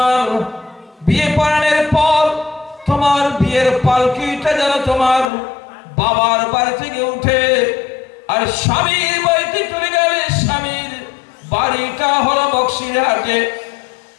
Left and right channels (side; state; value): right; drops out; at 5.2 s